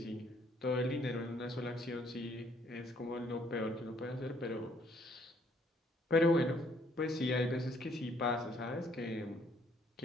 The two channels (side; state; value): both; normal; correlation 0.65